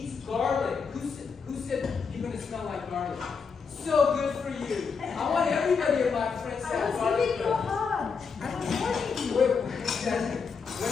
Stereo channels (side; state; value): right; quieter; 5.5 dB